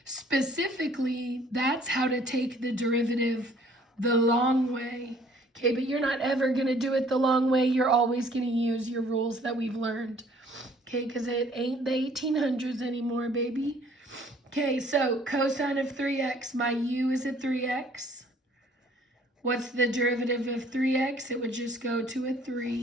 Specifically, that's how to take the derivative the long way. Okay, but you're not ever going to do it the long way. You're always going to use your rules that we've learned. Okay, because it ain't the 1800s anymore, baby. Okay, so cosine of 3x, my u is a 3x. What's the derivative of 3x? It would just go to a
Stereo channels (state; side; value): normal; both; correlation 0.58